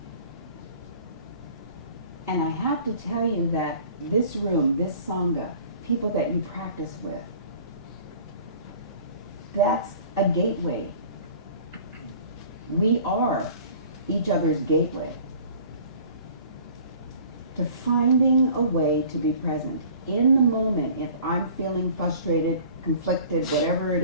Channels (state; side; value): inverted; both; correlation -0.48